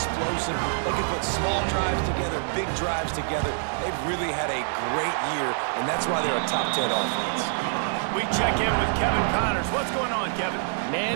They can put small drives together, big drives together. They've really had a great year, and that's why they're a top 10 offense. We check in with Kevin Connors. What's going on, Kevin?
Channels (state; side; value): silent; left; digital silence